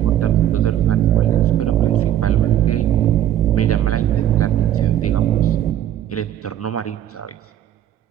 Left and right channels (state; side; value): quieter; left; 11.6 dB